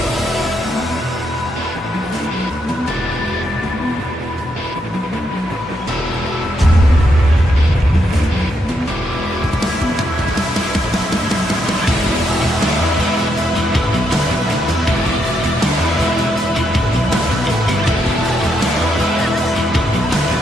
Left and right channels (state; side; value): normal; both; correlation 0.79